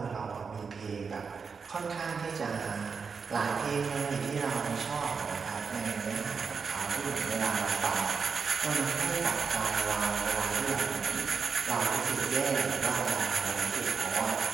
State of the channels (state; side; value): quieter; left; 5.5 dB